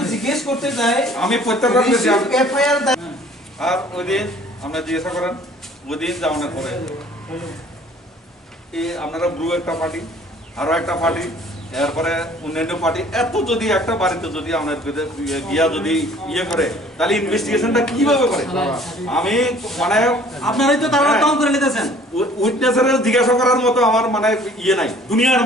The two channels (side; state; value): both; normal; correlation 0.53